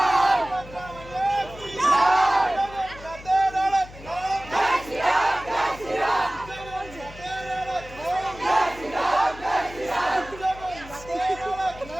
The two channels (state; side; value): noise; left; hum, 17 dB below the sound